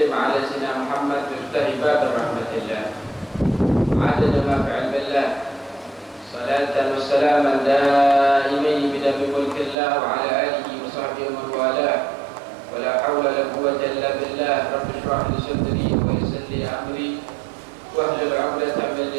على سيدنا محمد مفتاح باب رحمة الله عدد ما في علم الله صلاة وسلاما دائمين بدم ملك الله وعلى آله وصحبه ومن والاه ولا حول ولا قوة إلا بالله. رب اشرح لي صدري ويسر لي أمري واحلل عقدة من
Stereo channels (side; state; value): left; drops out; at 9.8 s